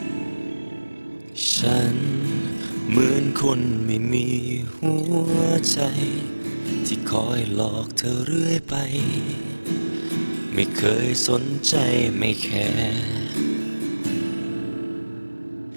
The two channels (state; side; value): inverted; both; correlation -1.00